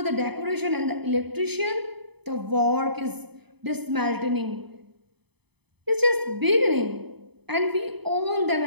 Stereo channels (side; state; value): left; late; 0.98 ms